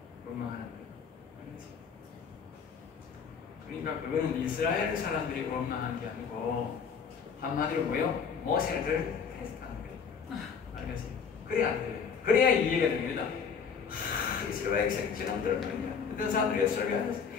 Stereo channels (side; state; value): right; quieter; 6.3 dB